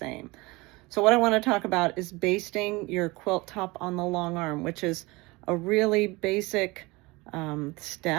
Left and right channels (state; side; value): quieter; left; 23.4 dB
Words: So what I want to talk about is basting your quilt top on the long arm, which is a really basic